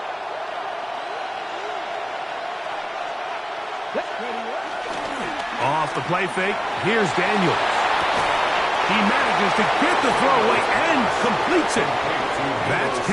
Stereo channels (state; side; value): identical; both; correlation 1.00